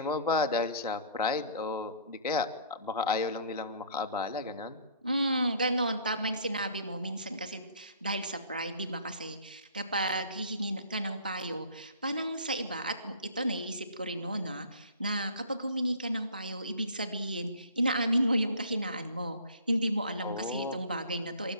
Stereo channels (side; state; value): both; inverted; correlation -0.48